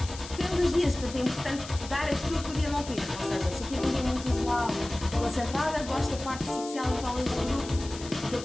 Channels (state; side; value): noise; left; hiss, 13 dB below the sound